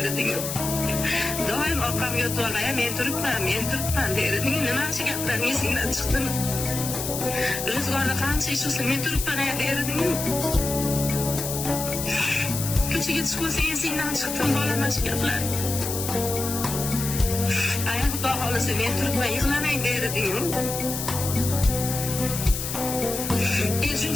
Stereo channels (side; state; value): left; noise; hiss, 5 dB below the sound